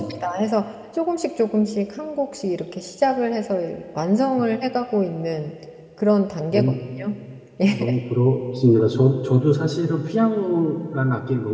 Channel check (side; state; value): both; identical; correlation 1.00